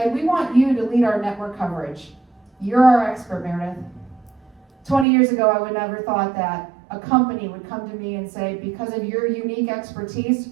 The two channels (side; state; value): left; drops out; at 5.1 s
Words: we want you to lead our network coverage. You're our expert, Meredith. 20 years ago, I would never thought that a company would come to me and say, because of your unique expertise,